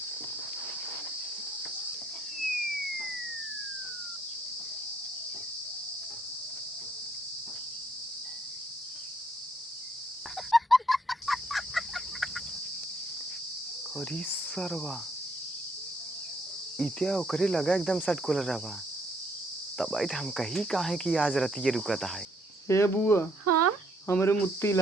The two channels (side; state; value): both; normal; correlation 0.69